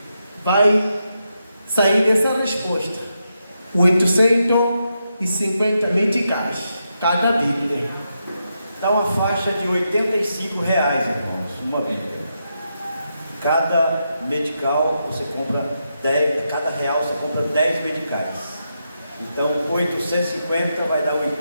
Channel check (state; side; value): inverted; both; correlation -0.84